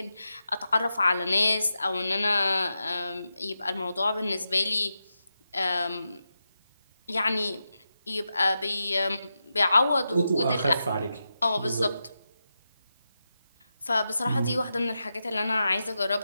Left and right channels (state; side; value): inverted; both; correlation -0.89